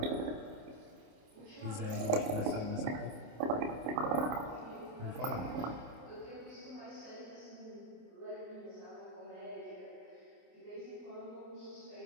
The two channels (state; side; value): late; left; 28 ms